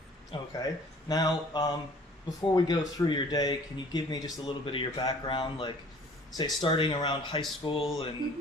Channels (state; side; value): normal; both; correlation 0.52